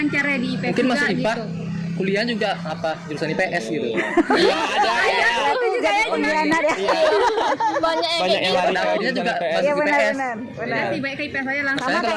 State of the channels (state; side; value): identical; both; correlation 1.00